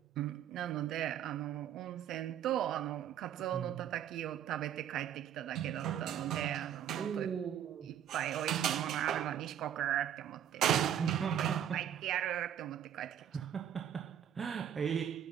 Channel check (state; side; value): quieter; left; 9.9 dB